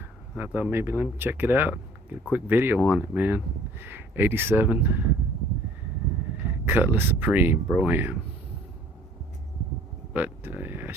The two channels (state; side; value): normal; both; correlation 0.54